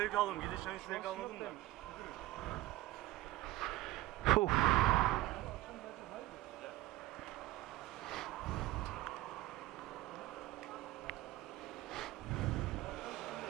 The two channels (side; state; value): left; quieter; 17.2 dB